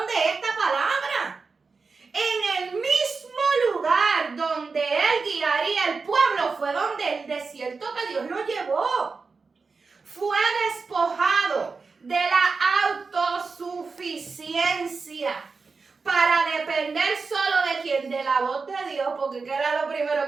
de esta palabra. En el mismo lugar donde él guiaría el pueblo fue donde el desierto que Dios lo llevó. Fue despojado de la autosuficiencia para depender solo de quién, de la voz de Dios, porque ¿qué era lo primero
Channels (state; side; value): quieter; left; 4.6 dB